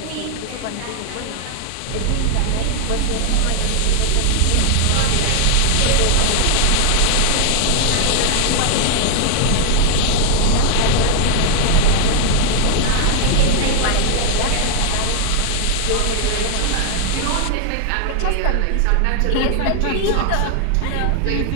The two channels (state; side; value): different; both; correlation 0.00